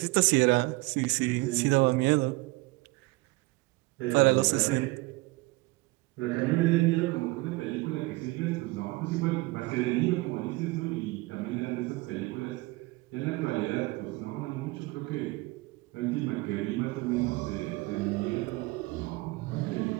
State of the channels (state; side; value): quieter; left; 22.4 dB